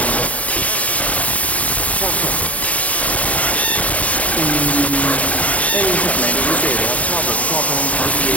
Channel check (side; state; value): right; late; 0.069 ms